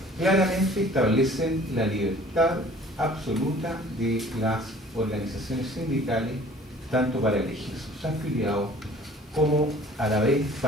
claramente establecen la libertad absoluta de las organizaciones sindicales, tanto para elegir sus afiliados como a la vez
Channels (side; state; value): both; normal; correlation 0.50